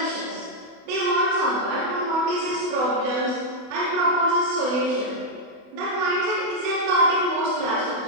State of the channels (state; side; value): late; left; 28 ms